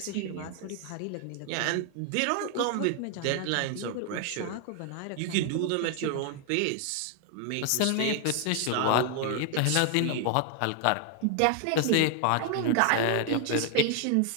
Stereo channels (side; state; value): both; different; correlation 0.00